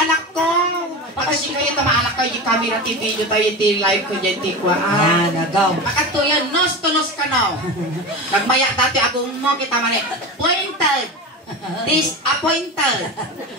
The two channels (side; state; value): both; normal; correlation 0.26